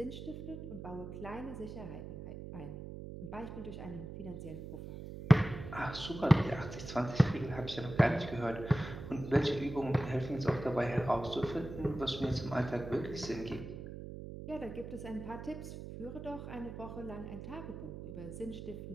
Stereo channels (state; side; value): noise; right; hum, 9 dB below the sound